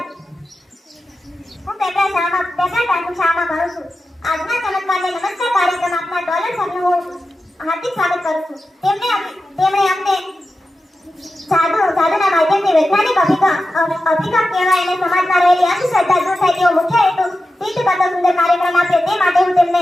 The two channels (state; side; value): normal; both; correlation 0.92